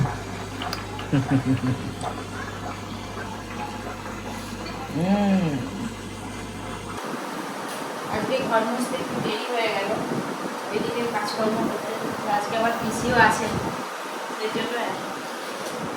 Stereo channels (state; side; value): identical; both; correlation 1.00